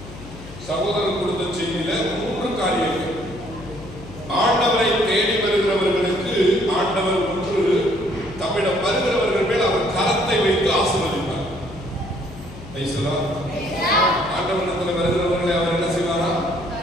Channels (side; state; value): left; noise; hum, 15 dB below the sound